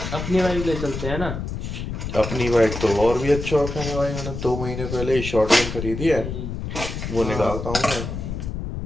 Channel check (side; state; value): left; noise; rumble, 5 dB below the sound